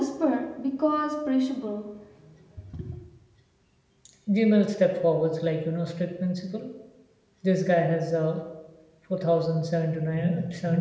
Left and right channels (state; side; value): identical; both; correlation 1.00